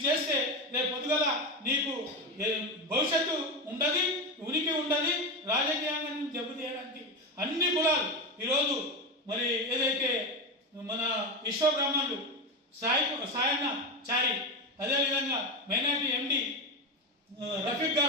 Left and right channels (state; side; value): normal; both; correlation 0.17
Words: చేస్తే రేపు పొద్దుగల నీకు భవిష్యత్తు ఉండదు, ఉనికి ఉండదు, రాజకీయంగా దెబ్బతీయడానికి అన్ని కులాలు ఈరోజు మరి ఏదైతే మన విశ్వబ్రహ్మణులు సాయన్న చారి, అదేవిధంగా మైనార్టీ ఎండి రఫీక్